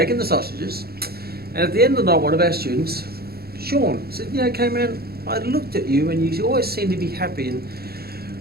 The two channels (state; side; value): late; left; 0.45 ms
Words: the sausages. And at the end of the night, one of our students, Sean, said, you know, Kman, I looked at you and you always seem to be happy. And